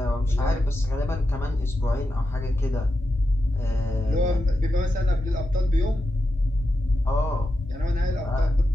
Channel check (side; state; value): both; normal; correlation 0.89